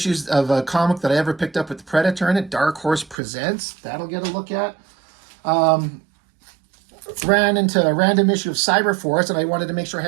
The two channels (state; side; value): drops out; left; at 3.2 s